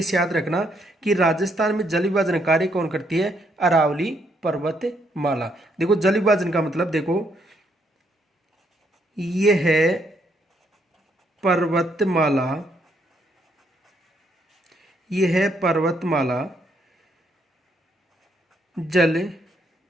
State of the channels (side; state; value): both; normal; correlation 0.73